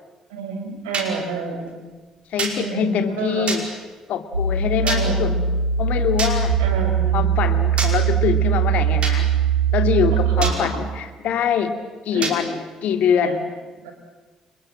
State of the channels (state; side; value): normal; both; correlation 0.17